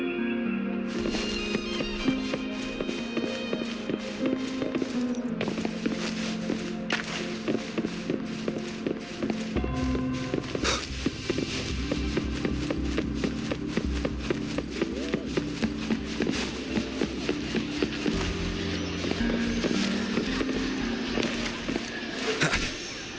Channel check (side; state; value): right; noise; hum, 21 dB below the sound